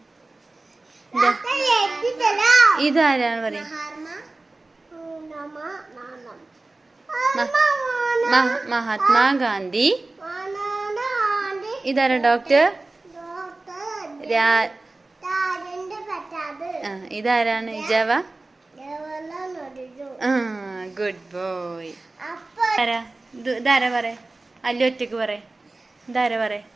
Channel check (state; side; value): quieter; left; 3.2 dB